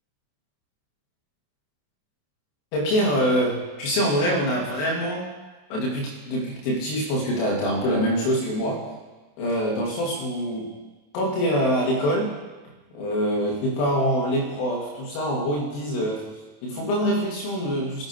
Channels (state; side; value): late; right; 28 ms